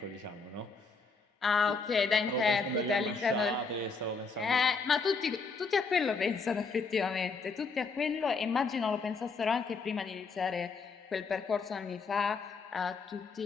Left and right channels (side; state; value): right; quieter; 4.5 dB